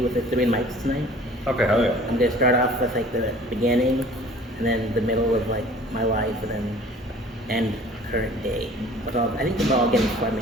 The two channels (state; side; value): normal; both; correlation 0.49